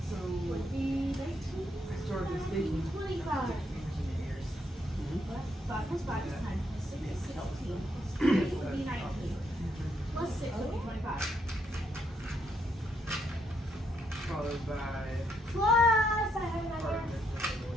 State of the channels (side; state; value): both; normal; correlation 0.75